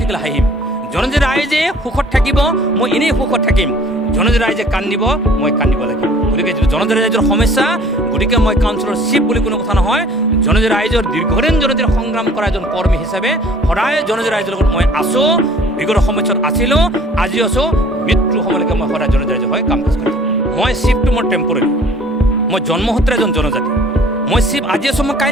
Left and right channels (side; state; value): both; normal; correlation 0.53